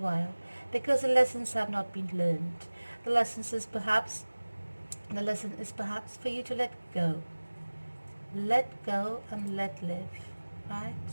because the lessons have not been learned. The lesson is perhaps for you to let go and let live, right?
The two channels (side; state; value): both; inverted; correlation -1.00